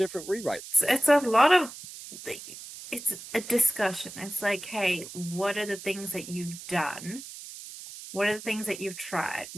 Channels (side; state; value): right; noise; hiss, 13 dB below the sound